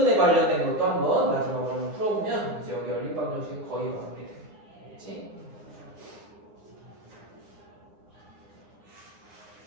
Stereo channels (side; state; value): left; late; 9.8 ms